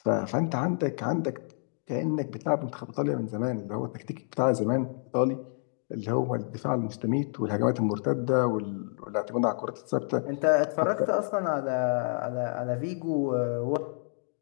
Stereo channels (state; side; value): silent; right; 59 dB below the other